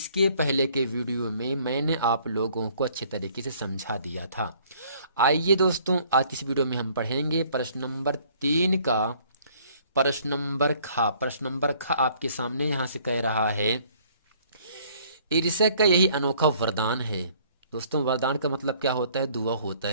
पहले के वीडियो में मैंने आप लोगों को अच्छे तरीके से समझा दिया था। आइए दोस्तों, आज इस वीडियो में हम पढ़ेंगे प्रश्न नंबर 3 का प्रश्न नंबर खा। प्रश्न नंबर खा आपके सामने यहाँ से कह रहा है, ईर्ष्या का यही अनोखा वरदान है। दोस्तों, वरदान का मतलब क्या होता है? दुआ होता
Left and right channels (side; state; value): both; inverted; correlation -0.59